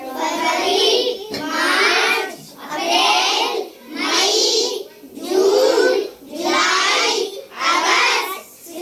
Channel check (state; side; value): identical; both; correlation 1.00